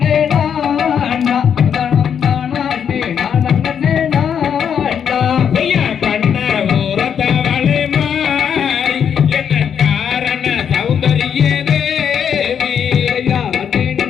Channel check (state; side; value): quieter; right; 8.0 dB